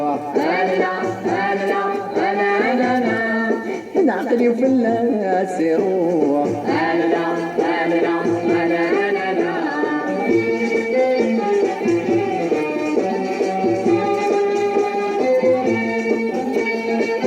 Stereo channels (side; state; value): both; identical; correlation 1.00